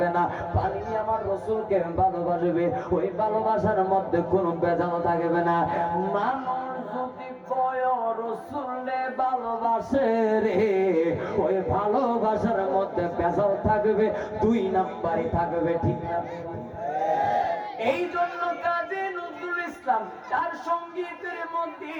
না। পানি আমার রসুলকে ভালোবাসবে, ওই ভালোবাসার মধ্যে কোনো ভেজাল থাকবে না। মানুষ যদি কয় রসুলে ভালোবাসে রে, ওই ভালোবাসার মধ্যে ভেজাল থাকবে, দুই নাম্বারই থাকবে, ঠিক না? এই জন্য কাজী নজরুল ইসলাম তার সঙ্গীতের মধ্যে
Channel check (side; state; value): both; identical; correlation 1.00